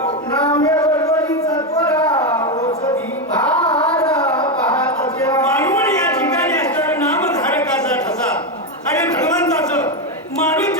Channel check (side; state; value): both; normal; correlation 0.09